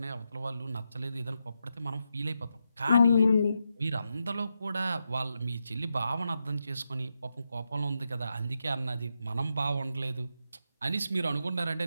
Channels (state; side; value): inverted; both; correlation -0.85